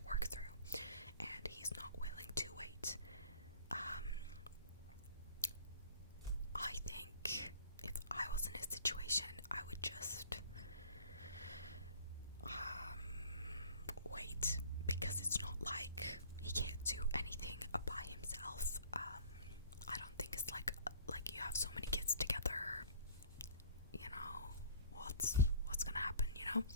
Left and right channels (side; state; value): both; inverted; correlation -0.49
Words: work through, and he's not willing to wait. I think if I was in his situation, I would just wait, because it's not like he can't do anything by himself. I don't think it's like you have so many kids together, you know, what's gonna happen, you know?